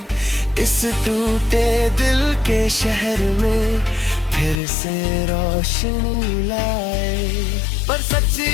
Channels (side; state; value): right; drops out; at 4.5 s